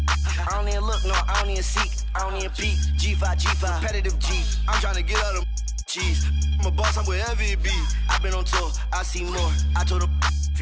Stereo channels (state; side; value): identical; both; correlation 1.00